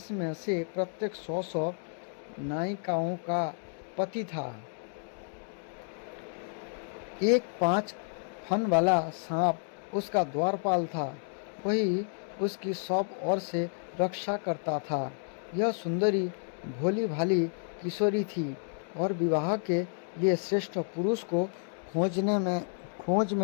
से प्रत्येक 100 नायिकाओं का पति था। एक 5 फन वाला सांप उसका द्वारपाल था, वही उसकी सब ओर से रक्षा करता था। यह सुंदरी भोली भाली किशोरी थी और विवाह के लिए श्रेष्ठ पुरुष को खोज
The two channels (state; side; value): silent; right; 57 dB below the other